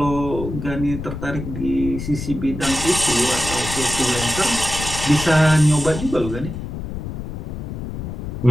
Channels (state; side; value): noise; left; rumble, 7 dB below the sound